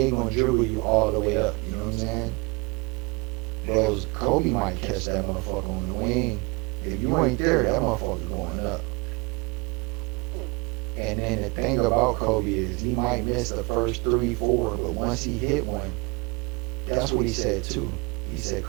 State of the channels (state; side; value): quieter; left; 27.9 dB